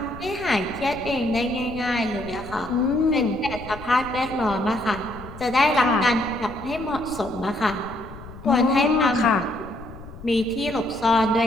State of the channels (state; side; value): noise; left; rumble, 16 dB below the sound